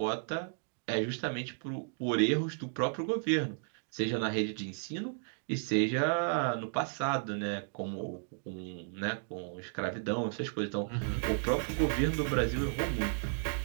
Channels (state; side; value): silent; left; digital silence